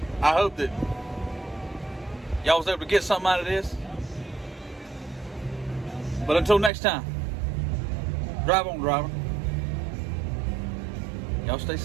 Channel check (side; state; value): left; drops out; at 6.7 s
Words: hope that y'all was able to get something out of this. But until next time, drive on, driver. Y'all stay